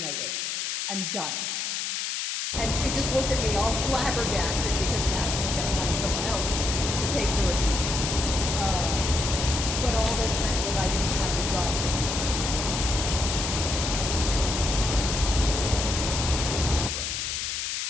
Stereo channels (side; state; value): left; noise; hiss, 2 dB below the sound